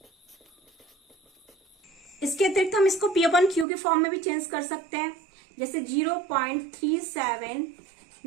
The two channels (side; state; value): left; drops out; at 3.7 s